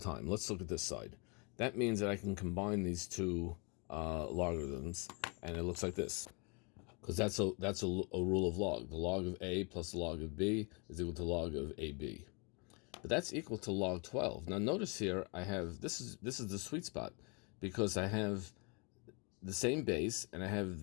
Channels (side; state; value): right; quieter; 32.8 dB